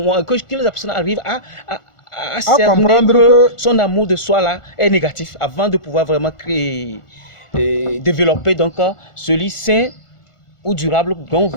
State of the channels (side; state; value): right; late; 1.5 ms